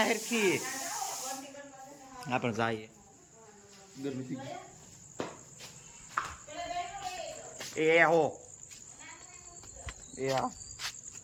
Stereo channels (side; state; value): both; identical; correlation 1.00